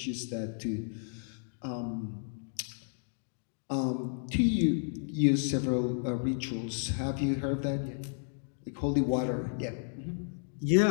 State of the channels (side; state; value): right; silent; digital silence